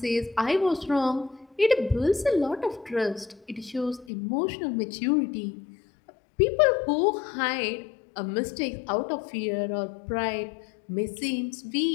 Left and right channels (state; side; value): drops out; right; at 4.0 s